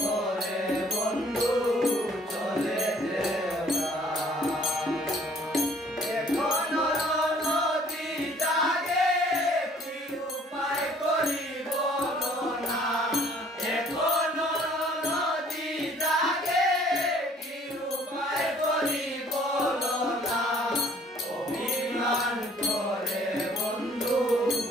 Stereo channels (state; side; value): normal; both; correlation 0.57